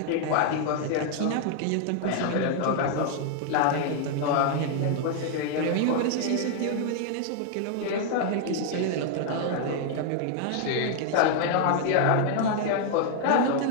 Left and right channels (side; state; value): both; different; correlation 0.00